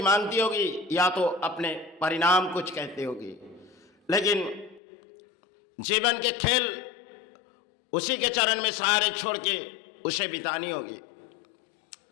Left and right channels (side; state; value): right; drops out; at 4.8 s